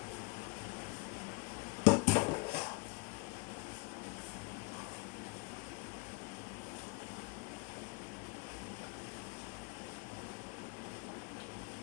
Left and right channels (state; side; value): quieter; right; 30.4 dB